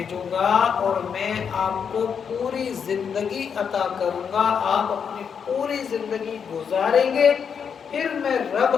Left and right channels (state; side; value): quieter; right; 6.9 dB